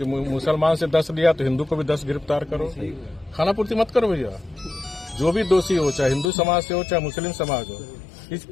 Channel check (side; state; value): right; drops out; at 6.3 s